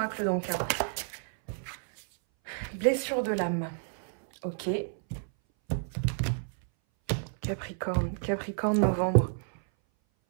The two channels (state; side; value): silent; left; 58 dB below the other